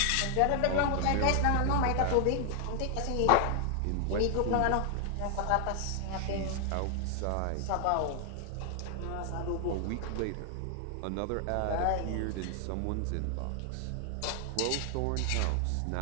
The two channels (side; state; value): both; different; correlation 0.00